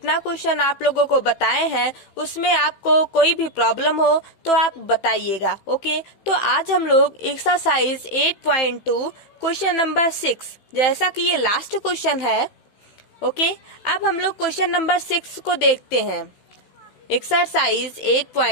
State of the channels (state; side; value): late; right; 16 ms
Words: क्वेश्चन आप लोगों को बताए हैं उसमें आपको कोई भी प्रॉब्लम हो तो आप बताइएगा। ओके, तो आज हम लोग एक्सरसाइज 8.2 क्वेश्चन नंबर 6, जैसा कि ये लास्ट क्वेश्चन है। ओके, अब हम लोग क्वेश्चन नंबर 6 को देखते हैं। एक्सरसाइज